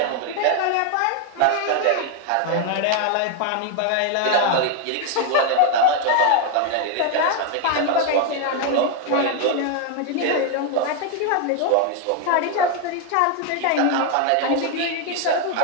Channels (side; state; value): both; different; correlation 0.01